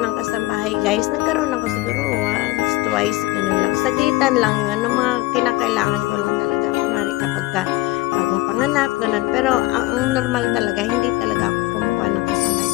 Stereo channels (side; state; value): right; quieter; 19.2 dB